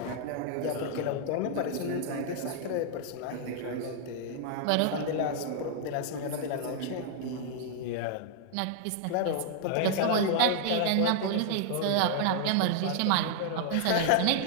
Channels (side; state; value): both; different; correlation 0.00